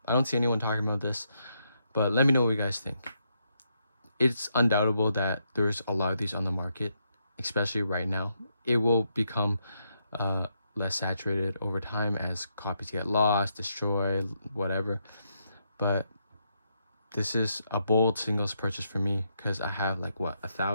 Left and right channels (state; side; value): inverted; both; correlation -0.79